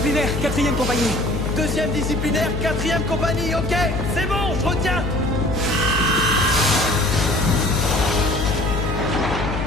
4e compagnie. 2e disciplinaire, 4e compagnie, ok. C'est bon, je retiens.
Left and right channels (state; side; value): noise; left; hum, 4 dB below the sound